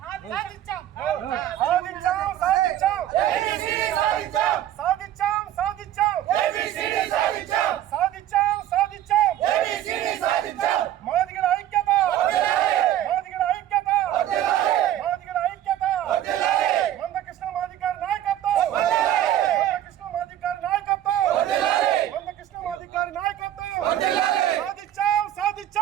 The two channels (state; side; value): quieter; left; 12.1 dB